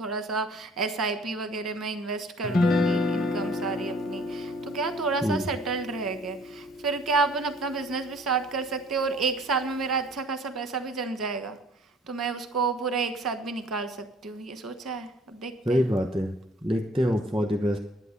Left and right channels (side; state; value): both; normal; correlation 0.54